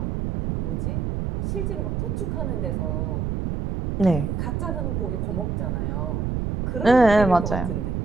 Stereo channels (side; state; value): right; noise; rumble, 1 dB below the sound